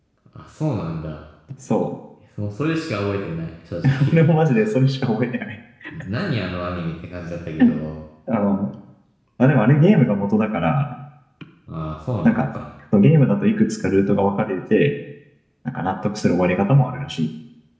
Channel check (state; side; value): identical; both; correlation 1.00